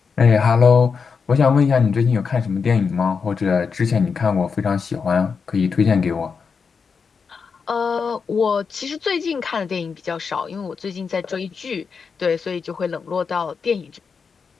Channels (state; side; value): quieter; right; 5.6 dB